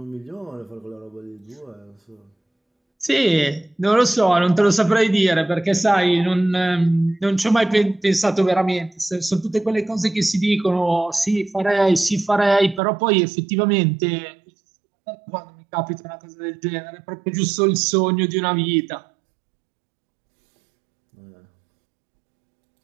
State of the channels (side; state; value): left; drops out; at 12.8 s